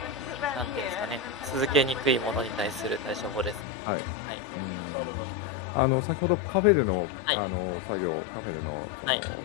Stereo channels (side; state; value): right; drops out; at 3.7 s